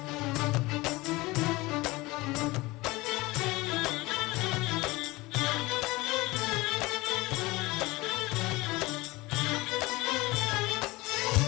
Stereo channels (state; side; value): quieter; right; 21.4 dB